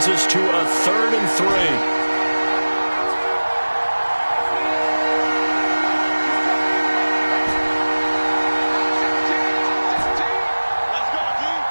us to a 3rd and 3.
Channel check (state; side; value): inverted; both; correlation -1.00